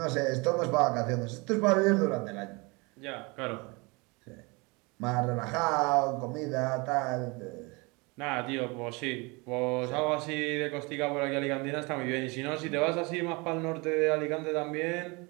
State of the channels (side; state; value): left; quieter; 27.5 dB